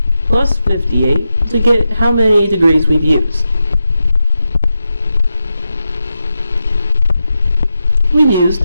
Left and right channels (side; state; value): both; inverted; correlation -0.88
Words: plus 58 to get how many degrees we've used. We've